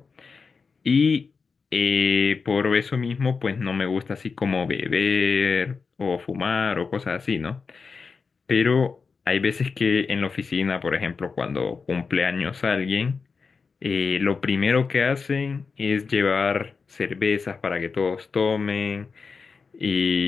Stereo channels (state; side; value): quieter; right; 5.0 dB